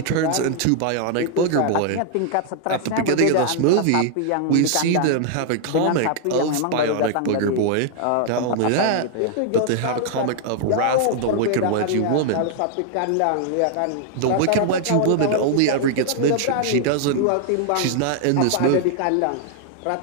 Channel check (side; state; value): both; different; correlation 0.00